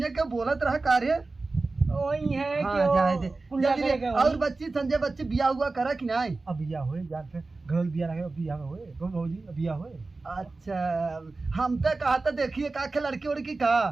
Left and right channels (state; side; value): quieter; left; 3.6 dB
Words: के बोलत रहा कार्य वही है हाँ, कि वो जाए दे। पुलिया जल्दी करेगा और वही। बच्ची संजय बच्ची बिया हुआ करा कि नहीं अब बिया होए यार से घर बिया लगे बिया होए कौन भौजी अब बिया होए अच्छा हम तो कहा था देखिए का के लड़की उड़की का